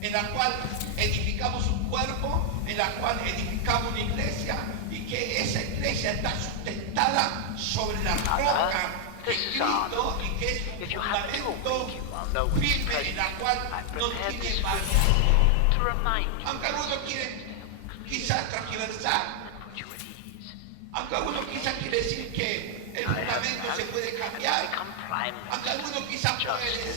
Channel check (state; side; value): different; both; correlation 0.00